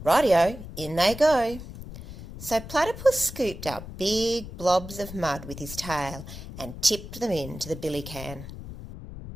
"Rightio, in they go." So Platypus scooped up big blobs of mud with his tail and tipped them into the billy can.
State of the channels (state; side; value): noise; left; rumble, 12 dB below the sound